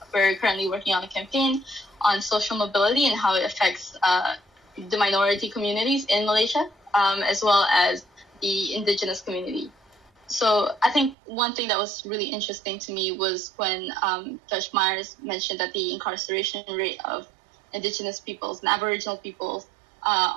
currently working on a campaign on social mobility and how it affects the minority communities in Malaysia, as well as the indigenous community. So I think one thing that was really interesting to me was when Judge Myers mentioned that the incarceration rate of indigenous peoples and Aboriginal peoples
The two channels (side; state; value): left; drops out; at 11.2 s